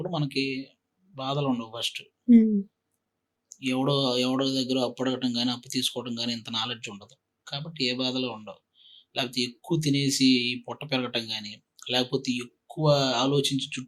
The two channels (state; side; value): identical; both; correlation 1.00